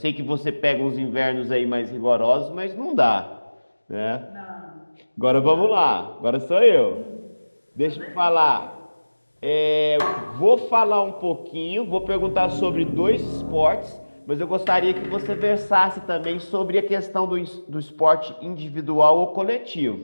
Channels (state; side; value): inverted; both; correlation -1.00